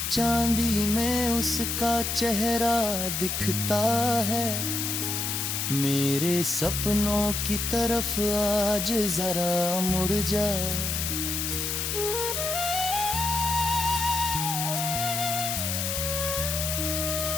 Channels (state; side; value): noise; left; hiss, 1 dB below the sound